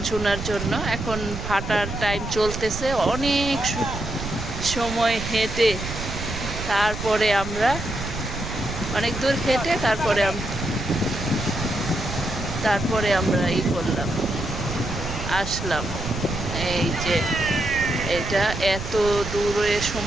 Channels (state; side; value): noise; right; rumble, 7 dB below the sound